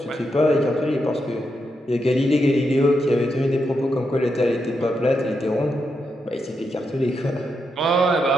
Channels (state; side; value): normal; both; correlation 0.84